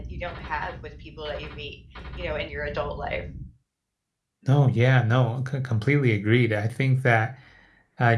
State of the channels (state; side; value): identical; both; correlation 1.00